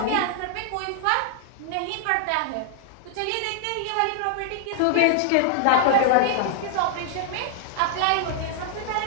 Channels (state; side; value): different; both; correlation 0.00